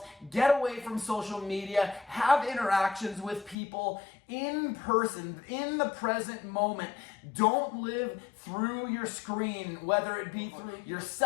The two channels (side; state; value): right; drops out; at 3.6 s